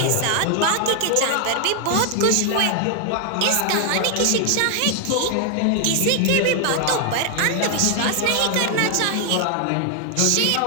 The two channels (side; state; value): both; different; correlation 0.00